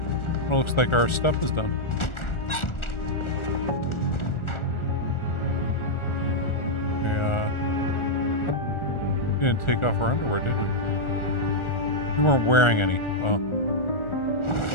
Well, looks like our stuff is done. We didn't take off our underwear, did we? We weren't wearing any. Well.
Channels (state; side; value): late; right; 1.4 ms